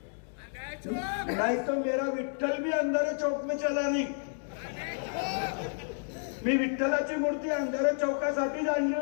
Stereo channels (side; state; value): right; silent; digital silence